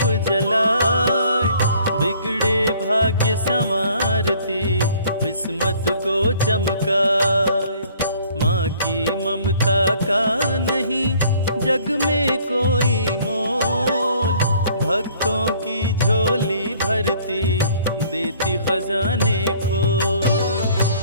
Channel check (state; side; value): inverted; both; correlation -0.57